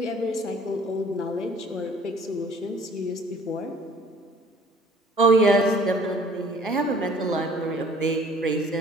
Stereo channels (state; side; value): normal; both; correlation 0.53